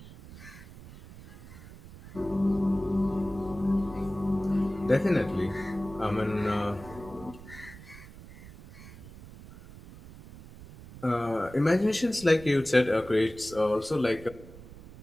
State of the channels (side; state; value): right; noise; rumble, 17 dB below the sound